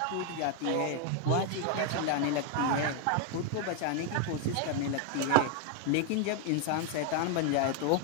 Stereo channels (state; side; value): different; both; correlation 0.00